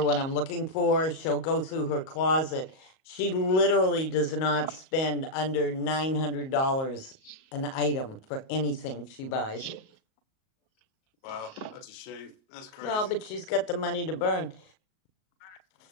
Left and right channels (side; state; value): right; late; 38 ms